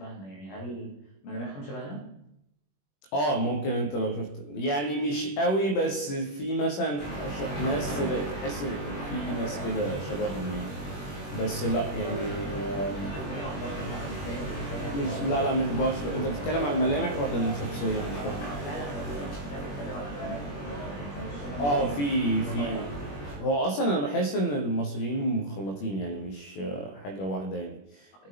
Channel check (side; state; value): right; late; 21 ms